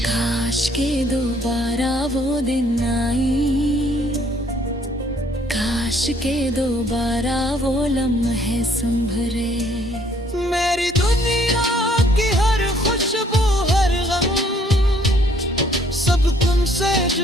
काश के दोबारा वो दिन आई, काश के दोबारा वो लम्हे संभरे। मेरी दुनिया की हर खुशबू हर गम सब तुमसे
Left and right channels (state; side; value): normal; both; correlation 0.63